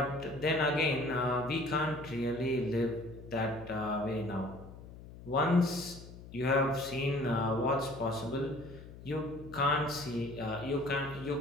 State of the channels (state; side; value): noise; left; hum, 16 dB below the sound